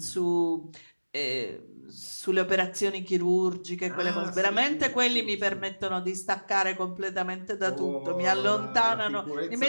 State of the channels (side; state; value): both; inverted; correlation -1.00